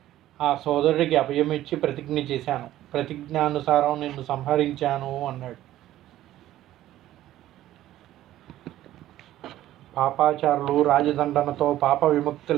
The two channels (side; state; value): left; quieter; 13.9 dB